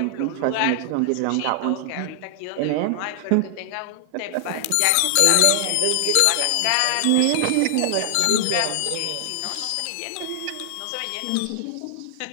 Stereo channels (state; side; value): different; both; correlation 0.00